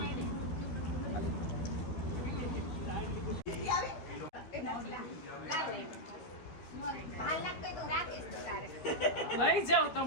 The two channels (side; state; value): right; late; 12 ms